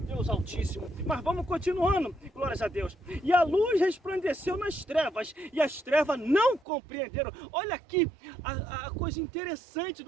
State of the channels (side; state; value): left; drops out; at 6.6 s